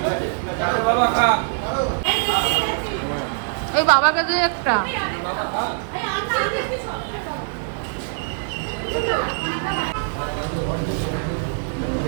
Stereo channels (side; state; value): left; silent; digital silence